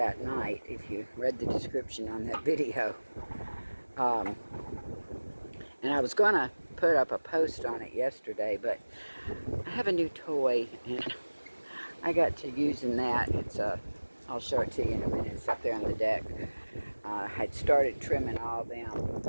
night, if you read the description on that video. And I was going to put up a post on it yesterday, but I have a new toy, and I got to using that. I'll show it to you in a minute. It's up there on the deck. I'd started trimming all them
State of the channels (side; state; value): both; inverted; correlation -1.00